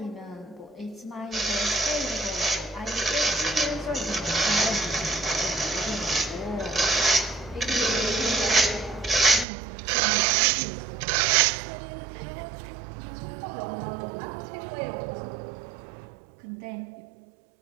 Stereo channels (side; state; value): left; drops out; at 9.5 s